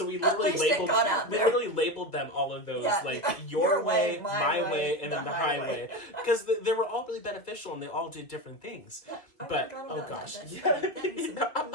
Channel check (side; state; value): right; late; 2.3 ms